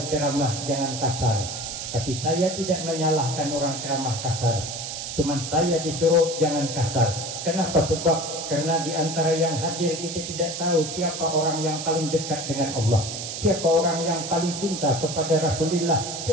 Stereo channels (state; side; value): noise; right; hiss, 6 dB below the sound